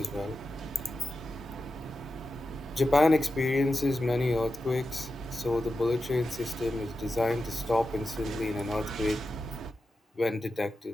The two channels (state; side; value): normal; both; correlation 0.91